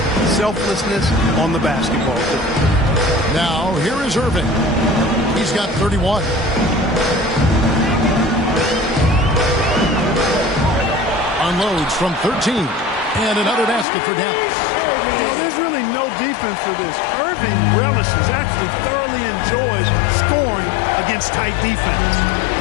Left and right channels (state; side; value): drops out; right; at 13.9 s